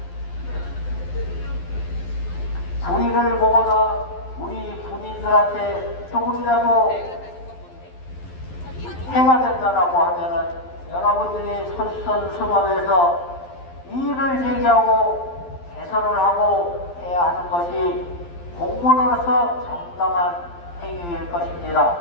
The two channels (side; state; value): right; late; 12 ms